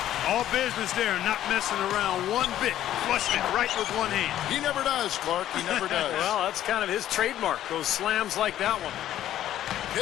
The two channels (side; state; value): right; quieter; 12.3 dB